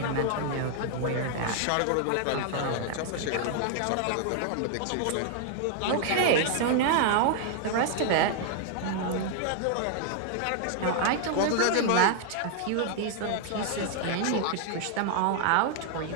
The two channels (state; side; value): different; both; correlation 0.00